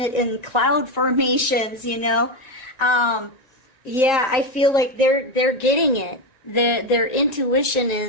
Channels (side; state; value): right; late; 1.9 ms